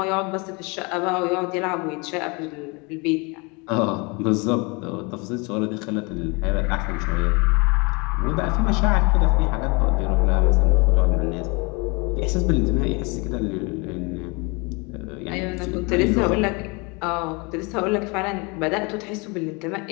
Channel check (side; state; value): right; quieter; 29.1 dB